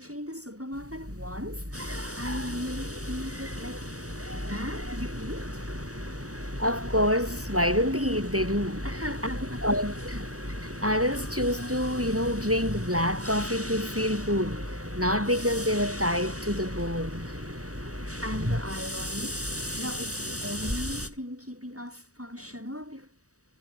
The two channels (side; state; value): left; late; 0.66 ms